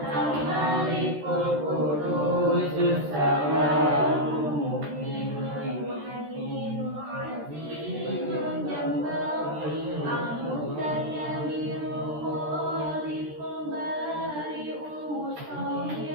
Qudusus Salamul Mu'minul Muhaiminul Azizul Jabbar Al-Mutayyibul Khaliqul Bari'ul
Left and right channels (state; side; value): late; left; 13 ms